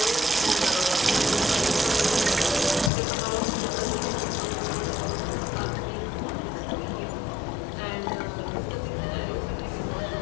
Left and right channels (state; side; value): drops out; right; at 2.9 s